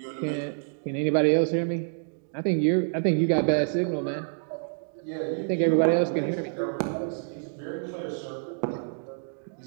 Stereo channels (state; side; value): silent; left; digital silence